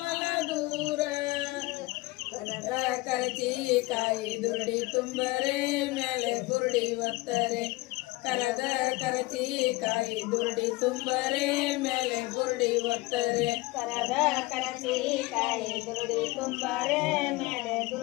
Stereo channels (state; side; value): quieter; right; 21.4 dB